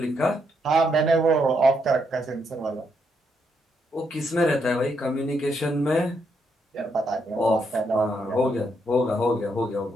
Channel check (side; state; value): both; normal; correlation 0.78